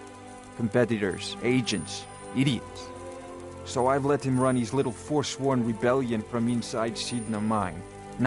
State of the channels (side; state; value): both; identical; correlation 1.00